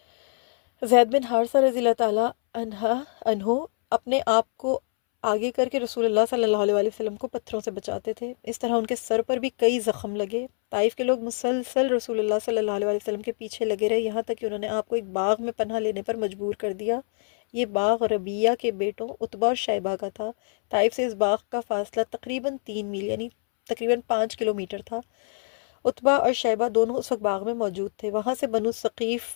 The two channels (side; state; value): right; silent; 62 dB below the other